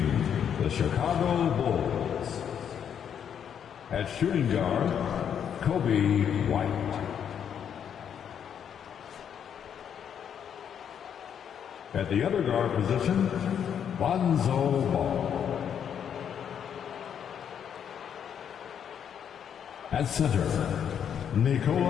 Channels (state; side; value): quieter; right; 8.4 dB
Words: the Chicago Bulls. At shooting guard, Kobe White. At the other guard position, Lonzo Ball. At center,